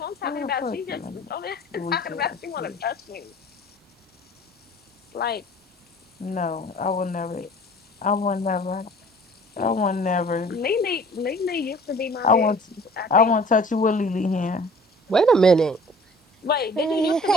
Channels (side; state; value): both; normal; correlation 0.49